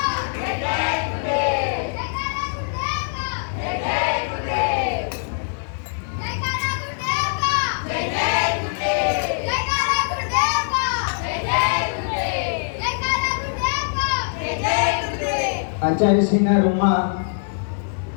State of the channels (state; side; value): silent; right; digital silence